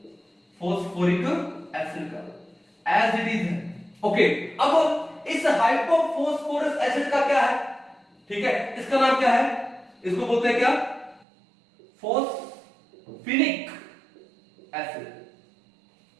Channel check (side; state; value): left; drops out; at 11.2 s